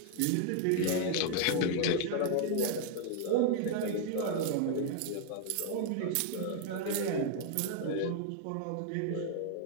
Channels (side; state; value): both; different; correlation 0.00